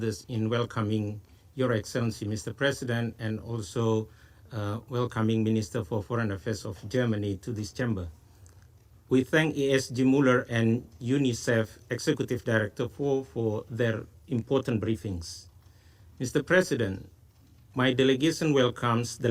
in welcoming Your Excellency, Mr. President, and also welcoming Minister for Foreign Affairs of Germany to this chamber. We thank ESG Muller and UNICEF Executive Director for their important briefings. Mr. President, my delegation welcomes the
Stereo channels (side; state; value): both; identical; correlation 1.00